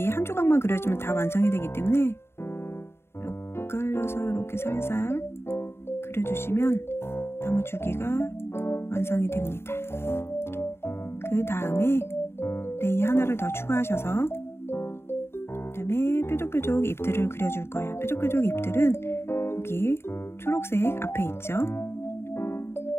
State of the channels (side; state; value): right; late; 0.12 ms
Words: 한 조각만 그려주면 다 완성이 되기 때문에 엇갈려서 이렇게 살살 그려주시면 나무 줄기가 완성이 됩니다. 그 다음에 레이어 하나를 더 추가하셔서 그 다음에 뾰족뾰족 잎들을 그려줄 거예요. 뾰족뾰족 잎들은 여기 초록색 앞에 있죠.